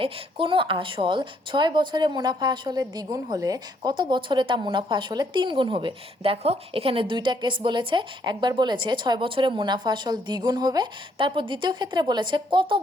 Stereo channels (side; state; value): both; normal; correlation 0.70